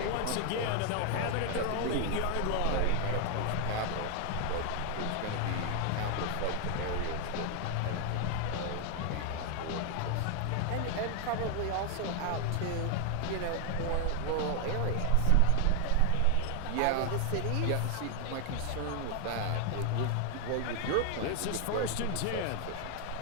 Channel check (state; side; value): different; both; correlation 0.00